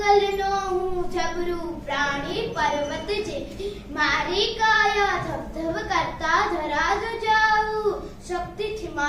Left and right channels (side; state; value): both; identical; correlation 1.00